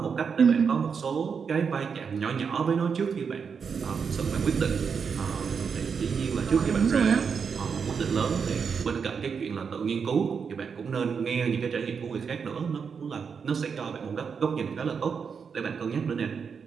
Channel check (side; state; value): left; quieter; 6.2 dB